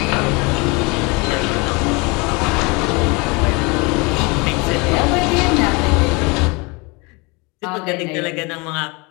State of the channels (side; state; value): right; quieter; 28.0 dB